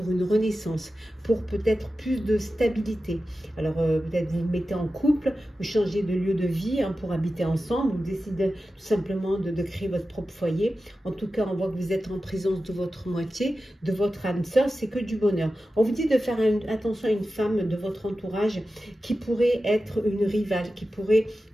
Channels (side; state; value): both; normal; correlation 0.93